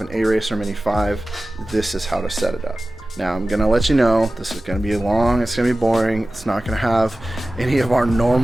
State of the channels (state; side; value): normal; both; correlation 0.96